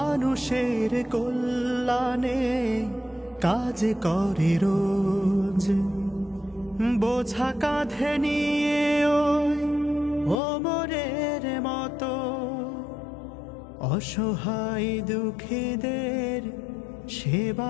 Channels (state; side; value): drops out; right; at 10.4 s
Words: কল্যাণে কাজ করে রোজ। বোঝা কাঁধে নিয়ে ওই ওমরের মতো অসহায় দুঃখীদের